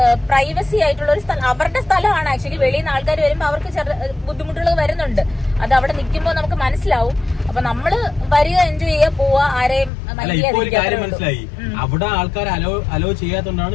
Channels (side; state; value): right; drops out; at 9.9 s